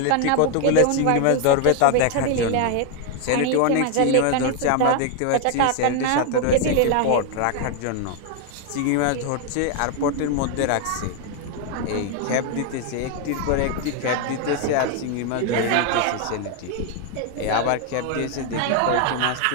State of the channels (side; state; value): both; different; correlation 0.01